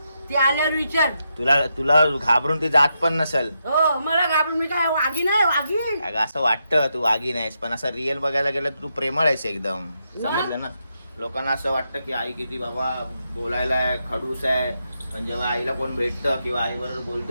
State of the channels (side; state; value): both; inverted; correlation -0.83